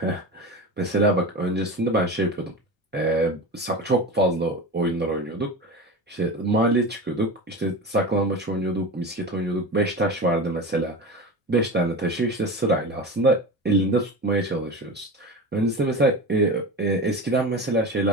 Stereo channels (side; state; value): both; normal; correlation 0.28